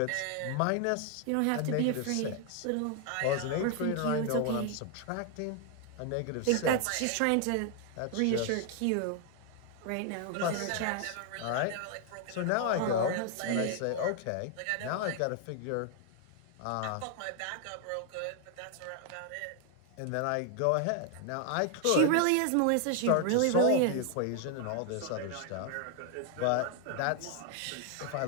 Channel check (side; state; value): both; different; correlation 0.00